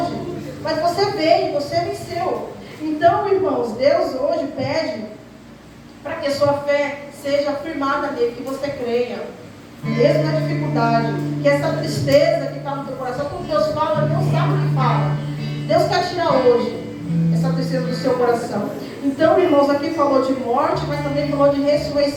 Mas você veio, você venceu. Então, irmãos, Deus hoje pede para que a sua fé seja firmada nele, que você creia. Mesmo na dificuldade, que essa tristeza que está no teu coração, quando Deus fala, Deus sabe o que fala. Deus quer tirar hoje essa tristeza do seu coração. Então, irmãos, aqui falou de morte, mas também falou de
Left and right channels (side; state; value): both; identical; correlation 1.00